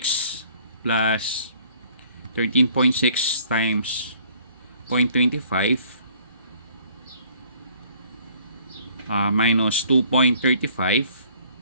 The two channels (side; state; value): both; inverted; correlation -0.58